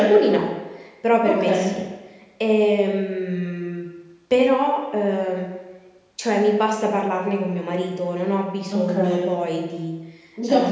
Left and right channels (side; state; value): both; identical; correlation 1.00